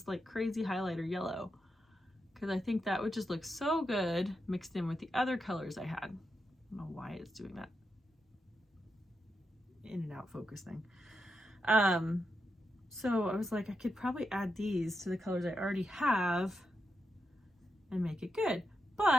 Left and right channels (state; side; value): normal; both; correlation 0.85